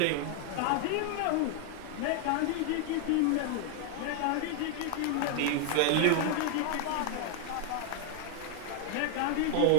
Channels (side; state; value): both; different; correlation -0.01